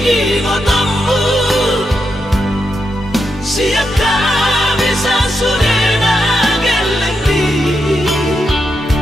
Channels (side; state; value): both; normal; correlation 0.84